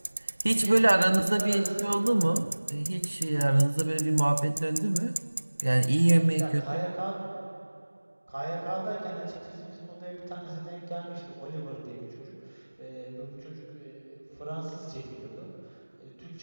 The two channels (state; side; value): inverted; both; correlation -1.00